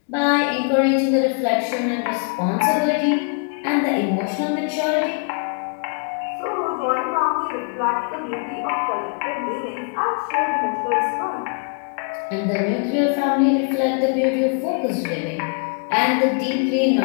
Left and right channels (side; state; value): right; quieter; 39.4 dB